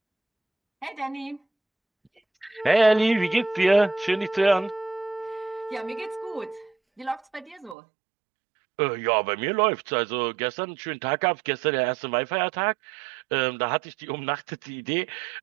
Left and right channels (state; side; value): drops out; left; at 7.8 s